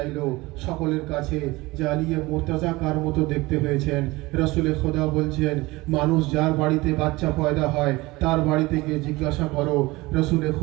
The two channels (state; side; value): quieter; left; 21.3 dB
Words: সকলের কাছে যে আলিয়ে মুর্তজা কার মতো দেখতে হয়েছেন। রাসূলে খোদা বলছেন, মানুষ যার বাড়িতে বাচ্চা পয়দা হয় তার বাড়িতে গিয়ে জিজ্ঞাসা করো। রাসূলে